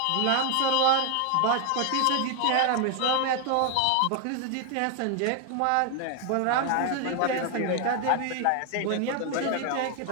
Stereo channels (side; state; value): both; different; correlation 0.01